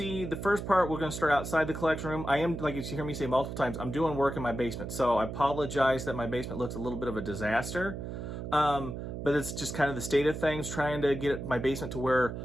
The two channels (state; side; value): noise; right; hum, 7 dB below the sound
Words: the first part. We're going to start outside the collection room. I am, like you hear me say multiple times, I'm doing work in my basement, so I apologize that my basement looks a little bit of a disaster, but it's just kind of the state of things, trying to get my basement to where